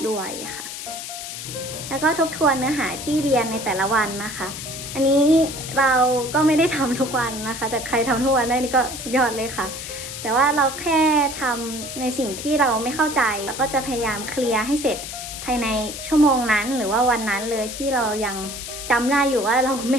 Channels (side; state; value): left; noise; hiss, 8 dB below the sound